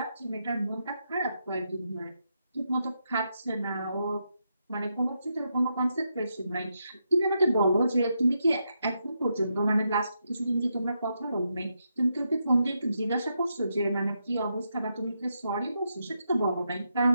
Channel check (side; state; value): both; inverted; correlation -0.83